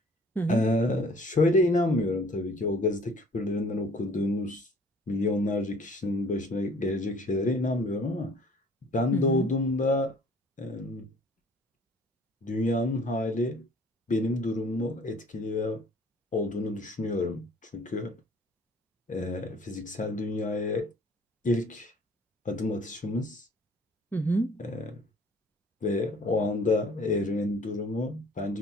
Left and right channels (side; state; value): both; normal; correlation 0.53